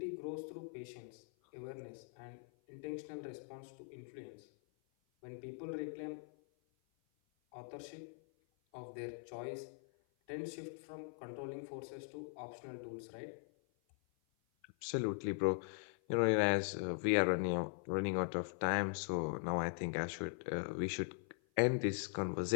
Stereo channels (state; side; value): silent; right; 50 dB below the other